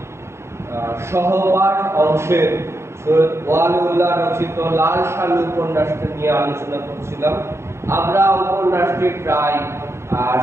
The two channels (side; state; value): left; late; 0.13 ms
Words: সহপাঠ অংশের সৈয়দ ওয়ালিউল্লাহ রচিত লাল সালু উপন্যাসটি নিয়ে আলোচনা করছিলাম। আমরা উপন্যাসটি প্রায়